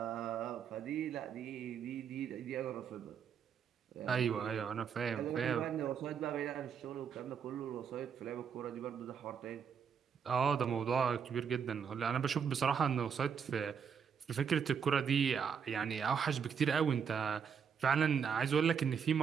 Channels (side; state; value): left; quieter; 7.0 dB